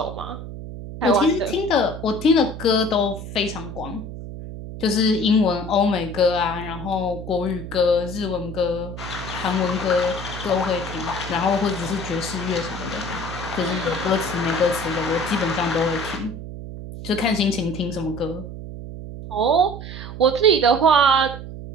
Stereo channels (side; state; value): right; noise; hum, 10 dB below the sound